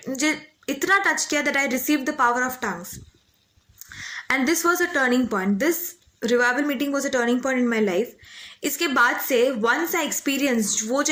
मुझे इतना टच किया that I received the power of tongues. And this was a turning point. This revival meeting was a turning point in my life. इसके बाद से वंस आई एक्सपीरियंस, वो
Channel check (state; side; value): identical; both; correlation 1.00